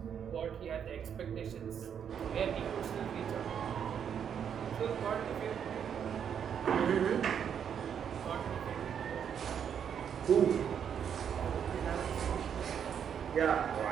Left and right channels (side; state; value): left; quieter; 8.1 dB